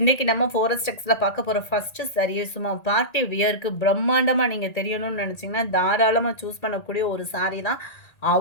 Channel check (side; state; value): right; late; 1.8 ms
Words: நம்ம 4S Texல பார்க்க போகிற ஃபஸ்ட்டு saree சும்மா பார்ட்டி வியருக்கு பிரம்மாண்டமாக நீங்கள் தெரியணும்னு நினச்சிங்கன்னா தாராளமாக சூஸ் பண்ணக்கூடிய ஒரு saree தான்.